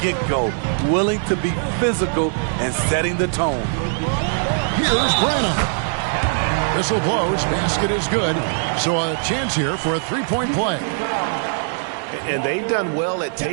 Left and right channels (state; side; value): silent; left; digital silence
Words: willing to be physical and setting the tone. Here's Branham. Whistle blows, basket is good. So a chance here for a three-point play. And they've done well at